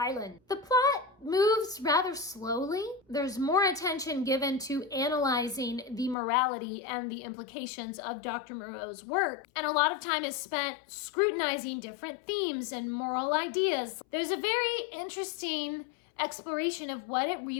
The plot moves rather slowly. There's more attention given to analyzing the morality and the implications of Dr. Moreau's work, and a lot of time is spent scrutinizing different themes and moral ideas. There's a very interesting exploration of what it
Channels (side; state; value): right; drops out; at 6.2 s